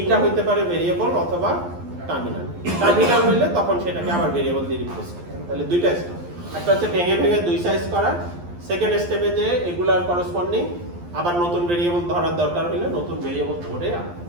হইতে পারে ভেরিয়েবল অথবা টার্মিনাল হইলে তখন সেটাকে আবার ভেরিয়েবল দিয়ে রিপ্লেস করতে হবে। তাহলে দুইটা স্টেপ, একটা হচ্ছে ভেঙে দুই সাইজ করা, সেকেন্ড স্টেপে যে এগুলার করসপন্ডিং আবার নতুন ভেরিয়েবল ধরার দরকার হইলে নতুন ভেরিয়েবল ধরে আনা,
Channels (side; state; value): left; late; 11 ms